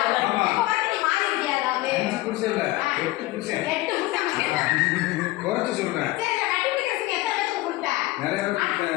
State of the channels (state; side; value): quieter; right; 18.8 dB